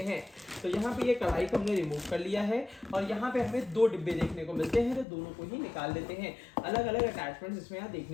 हैं। तो यहाँ पे ये कढ़ाई को हमने रिमूव कर लिया है और यहाँ पे हमें 2 डिब्बे देखने को मिलते हैं, तो दोनों को ही निकाल लेते हैं। अलग अलग अटैचमेंट्स इसमें यहाँ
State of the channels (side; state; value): right; drops out; at 5.1 s